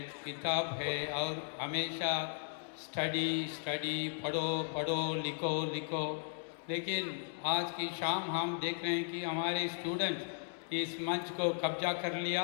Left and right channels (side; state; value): right; silent; digital silence